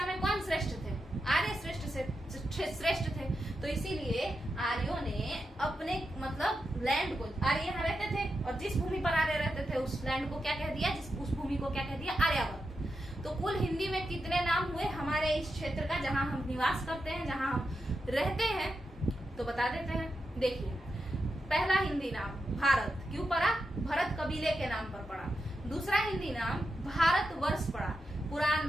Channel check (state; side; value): normal; both; correlation 0.88